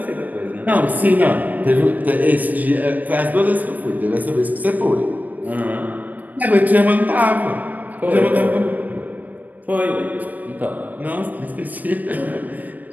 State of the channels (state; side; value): late; left; 0.081 ms